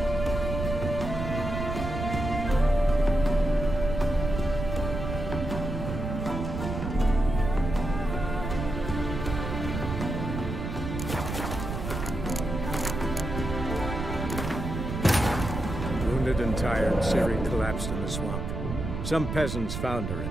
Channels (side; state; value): right; noise; rumble, 4 dB below the sound